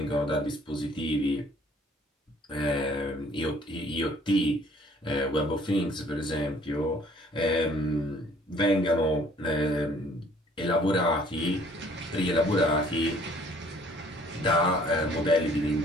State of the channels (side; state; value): both; normal; correlation 0.57